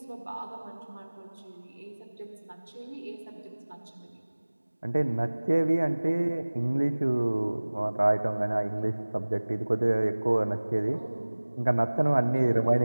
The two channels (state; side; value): inverted; both; correlation -1.00